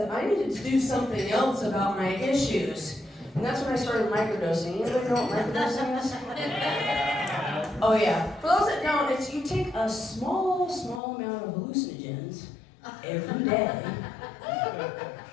I needed to do something else about my issues. And that's when I started microdosing. Anybody know what microdosing is? Oh yeah. For those that don't, it's you take a small amount of hallucinogens every day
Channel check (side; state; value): right; drops out; at 11.0 s